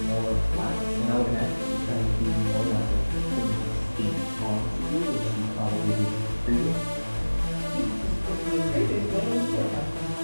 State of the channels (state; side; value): inverted; both; correlation -1.00